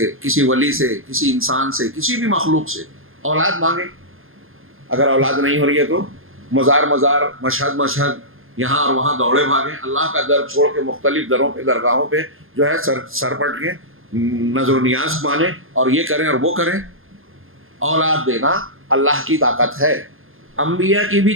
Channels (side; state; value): left; late; 0.60 ms